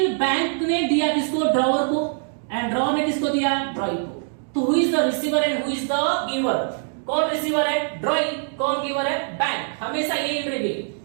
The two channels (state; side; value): silent; left; digital silence